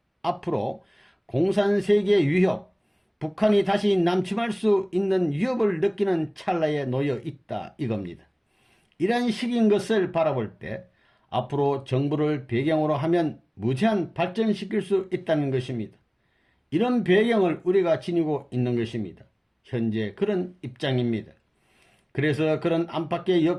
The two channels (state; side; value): identical; both; correlation 1.00